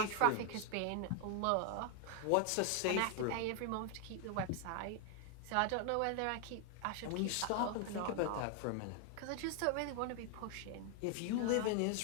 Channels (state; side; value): different; both; correlation 0.00